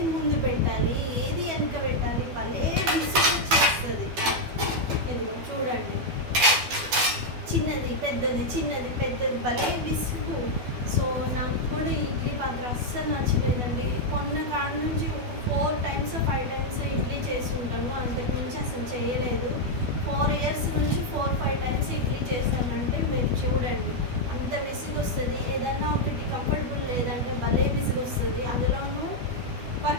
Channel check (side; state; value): left; late; 12 ms